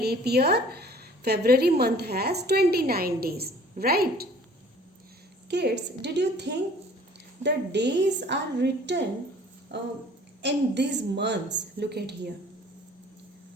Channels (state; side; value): normal; both; correlation 0.51